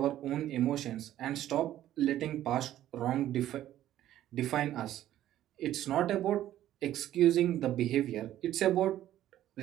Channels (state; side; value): quieter; left; 12.8 dB